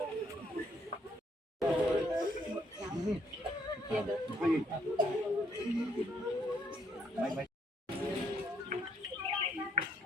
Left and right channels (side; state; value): both; normal; correlation 0.70